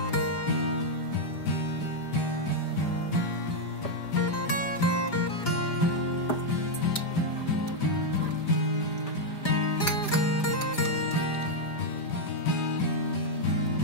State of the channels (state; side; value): late; right; 5.0 ms